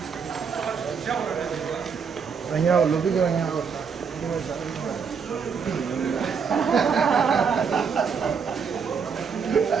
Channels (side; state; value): left; quieter; 6.2 dB